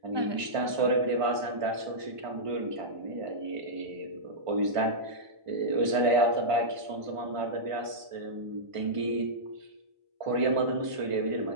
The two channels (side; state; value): left; late; 1.5 ms